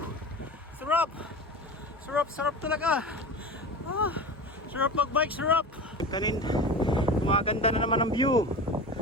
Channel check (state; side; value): normal; both; correlation 0.30